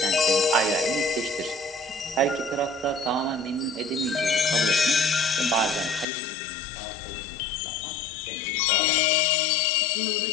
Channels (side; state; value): right; drops out; at 6.1 s